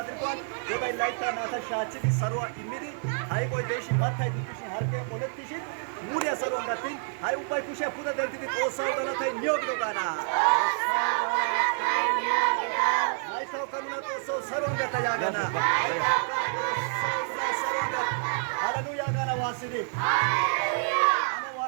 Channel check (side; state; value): left; silent; 59 dB below the other